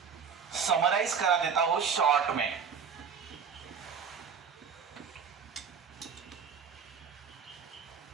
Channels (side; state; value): left; quieter; 6.6 dB